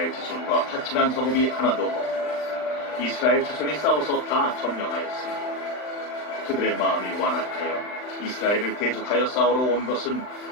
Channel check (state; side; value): late; right; 39 ms